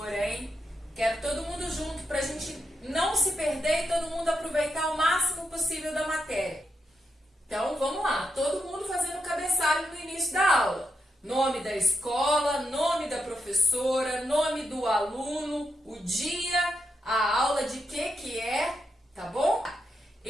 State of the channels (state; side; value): normal; both; correlation 0.84